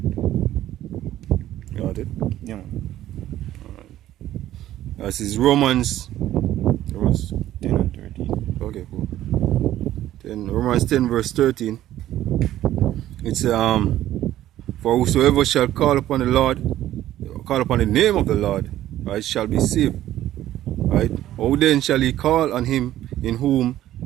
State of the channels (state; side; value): quieter; left; 13.3 dB